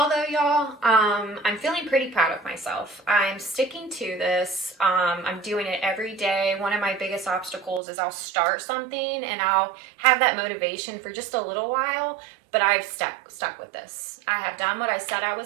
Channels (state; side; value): drops out; left; at 7.8 s